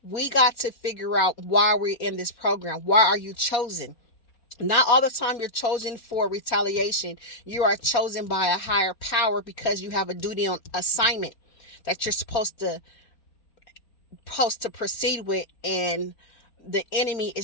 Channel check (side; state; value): right; late; 4.2 ms